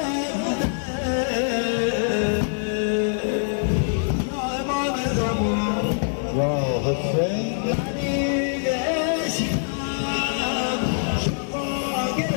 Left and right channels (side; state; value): right; silent; digital silence